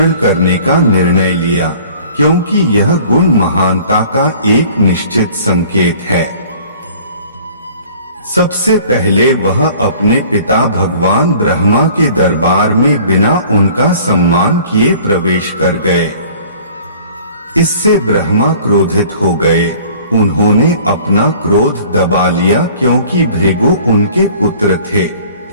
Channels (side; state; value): both; inverted; correlation -0.51